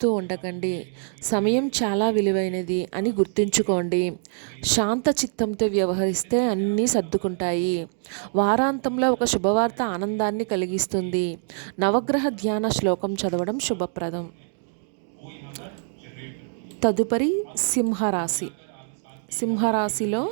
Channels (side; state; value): left; silent; digital silence